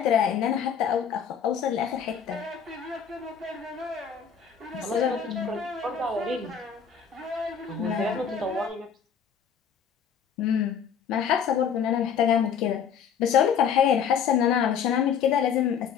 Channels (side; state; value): right; quieter; 7.5 dB